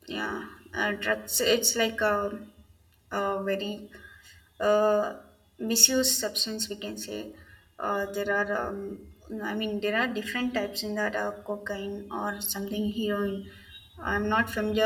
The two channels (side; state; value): both; identical; correlation 1.00